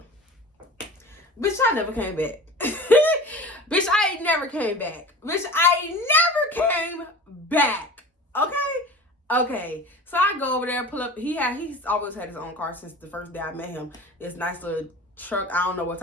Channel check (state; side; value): normal; both; correlation 0.37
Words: Bitch, I never came back. Bitch, I ain't never came back. Bitch, I ain't never came back. Okay. So I go over there, pull up. He's always had his own car since the first day I met him. This nice little truck. I don't know what